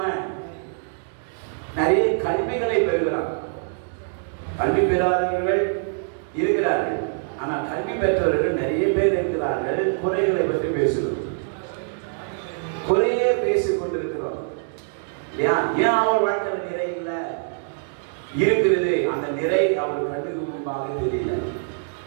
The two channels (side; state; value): left; silent; digital silence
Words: நிறைய கல்விகளை பெறுகிறார். கல்வி பெறாதவர்கள் இருக்கிறார்கள், ஆனால் கல்வி பெற்றவர்கள் நிறைய பேர் இருக்கிறார்கள். குறைகளை பற்றி பேசுகிறோம், குறையே பேசிக் கொண்டிருக்கிறோம். ஏன் அவர் வாழ்க்கையில் நிறை இல்லை இருக்கிறது? அந்த நிறை அவர் கண்ணுக்கு முன்பாக தெரியல,